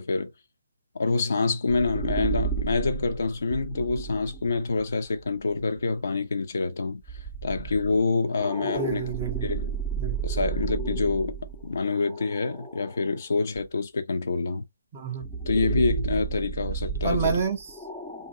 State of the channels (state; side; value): inverted; both; correlation -0.72